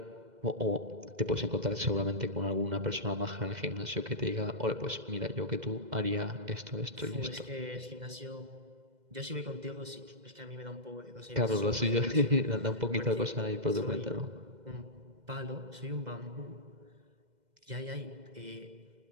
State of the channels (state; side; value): late; left; 2.0 ms